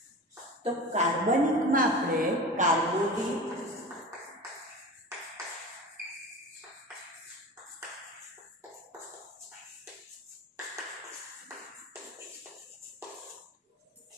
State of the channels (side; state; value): both; normal; correlation 0.32